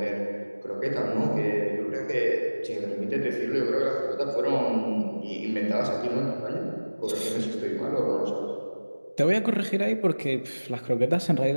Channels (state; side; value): inverted; both; correlation -1.00